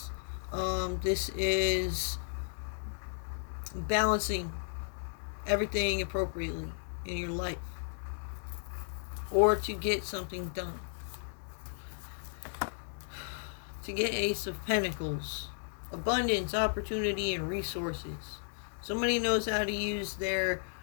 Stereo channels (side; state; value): right; silent; digital silence